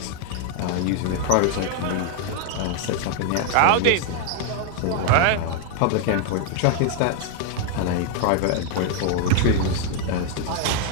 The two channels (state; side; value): different; both; correlation 0.00